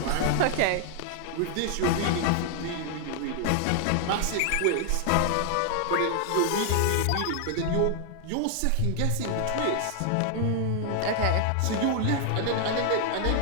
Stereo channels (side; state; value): both; different; correlation 0.00